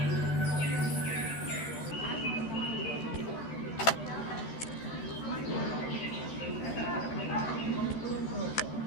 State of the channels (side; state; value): right; late; 13 ms